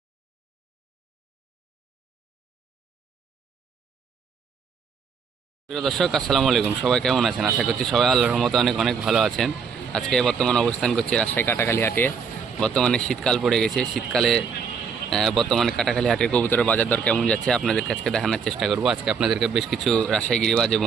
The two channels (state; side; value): quieter; left; 6.1 dB